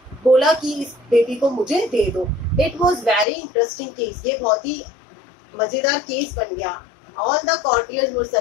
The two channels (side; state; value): right; drops out; at 3.2 s